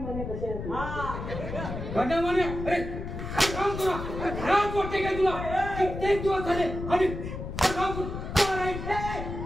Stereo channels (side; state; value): left; noise; rumble, 7 dB below the sound